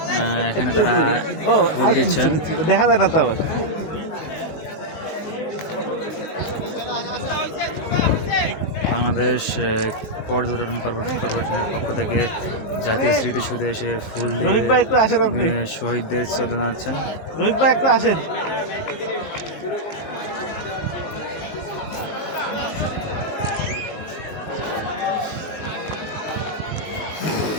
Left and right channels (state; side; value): late; right; 19 ms